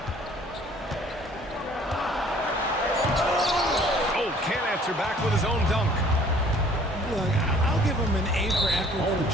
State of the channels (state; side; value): normal; both; correlation 0.55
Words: Oh, can't answer back with his own dunk. Look, I'll give him an A for effort for